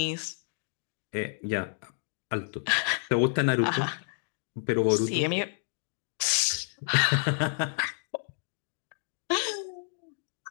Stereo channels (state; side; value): silent; right; digital silence